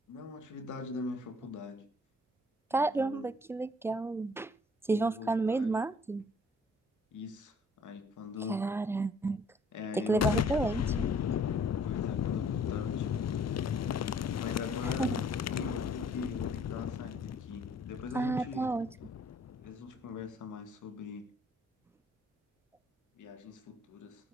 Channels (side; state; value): both; normal; correlation 0.59